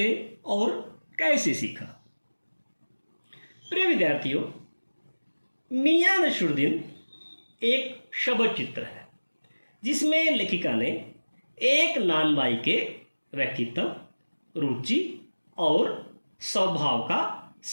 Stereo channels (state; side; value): inverted; both; correlation -1.00